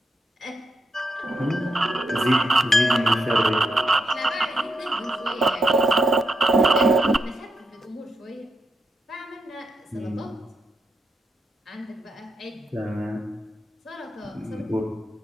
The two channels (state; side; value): normal; both; correlation 0.83